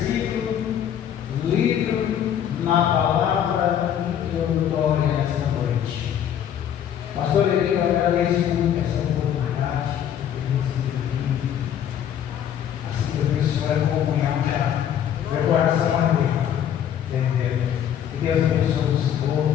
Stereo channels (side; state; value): right; quieter; 9.7 dB